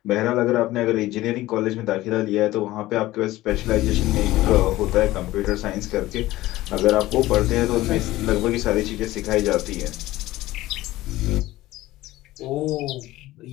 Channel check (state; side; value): quieter; right; 17.0 dB